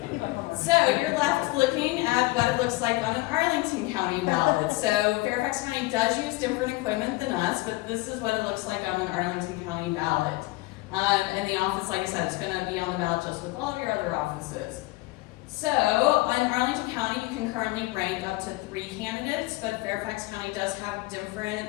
So you're left looking at what it looks like on an Arlington County ballot. So Fairfax County does use different equipment than us, but this is what it looks like on an Arlington County ballot. And the office, like I said, is going to be on the ballot just with all of your other offices. So on Arlington County, you can currently rank up to 3 candidates, but Fairfax County does have different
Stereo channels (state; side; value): quieter; right; 21.1 dB